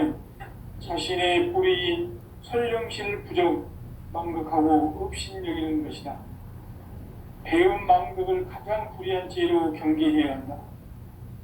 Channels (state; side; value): identical; both; correlation 1.00